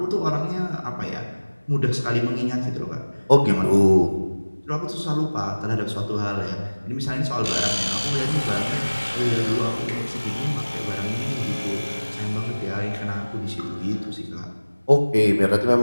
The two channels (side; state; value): both; inverted; correlation -1.00